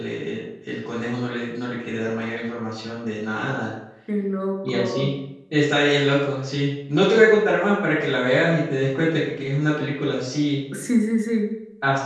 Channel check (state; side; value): identical; both; correlation 1.00